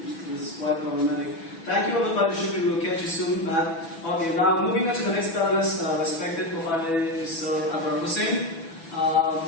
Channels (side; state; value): right; late; 6.1 ms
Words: it was quite problematic. Thank you, Abid Saidy. We will catch you soon. Okay, now moving on to the next panelist, respected Professor Abrar Hussain.